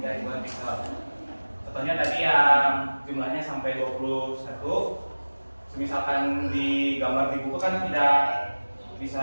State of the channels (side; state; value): both; inverted; correlation -1.00